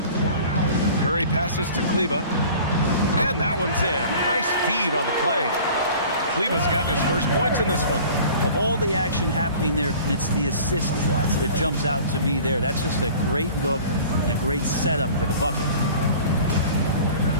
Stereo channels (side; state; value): both; inverted; correlation -0.45